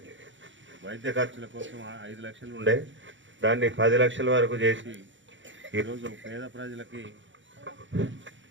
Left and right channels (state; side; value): late; left; 0.55 ms